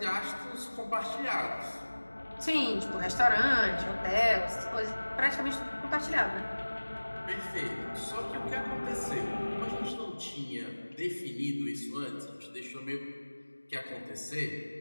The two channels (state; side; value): inverted; both; correlation -1.00